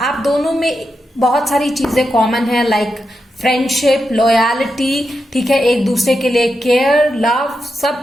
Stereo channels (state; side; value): normal; both; correlation 0.87